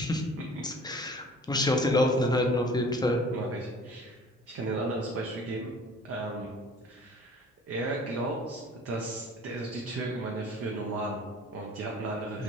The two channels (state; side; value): normal; both; correlation 0.49